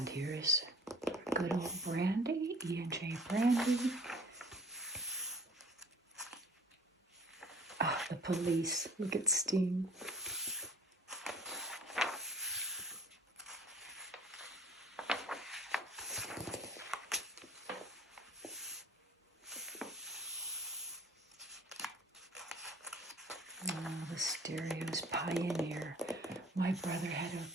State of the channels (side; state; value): both; normal; correlation 0.50